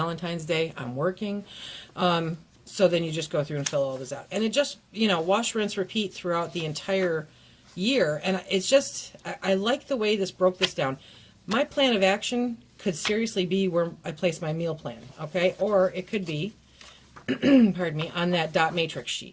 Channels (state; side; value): identical; both; correlation 1.00